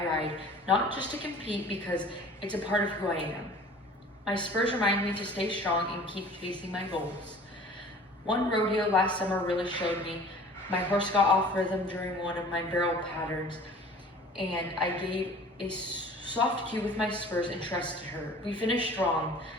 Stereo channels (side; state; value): both; normal; correlation 0.46